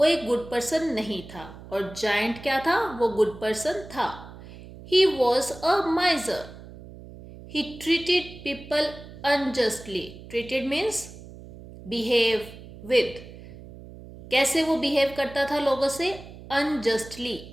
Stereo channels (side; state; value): right; noise; hum, 16 dB below the sound